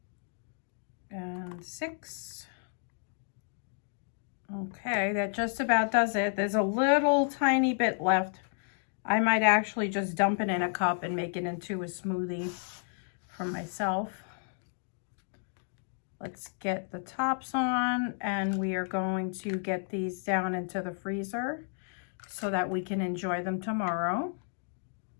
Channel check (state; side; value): silent; right; 57 dB below the other